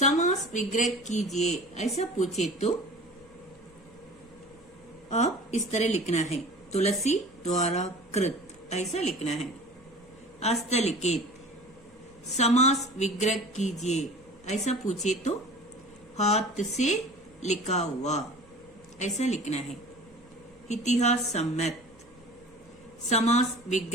विग्रह कीजिए ऐसा पूछे तो आप इस तरह लिखना है। तुलसी द्वारा कृत ऐसा लिखना है। हस्तलिखित, समास विग्रह कीजिए ऐसा पूछे तो हाथ से लिखा हुआ ऐसा लिखना है। इतिहास सम्मत, समास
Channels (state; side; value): noise; left; hum, 30 dB below the sound